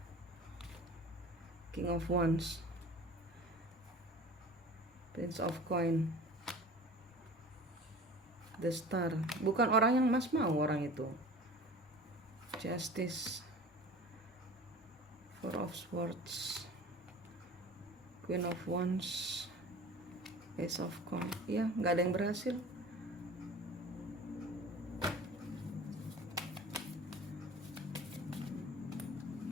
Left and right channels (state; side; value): normal; both; correlation 0.40